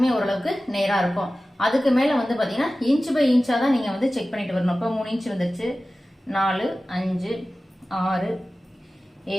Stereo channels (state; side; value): normal; both; correlation 0.96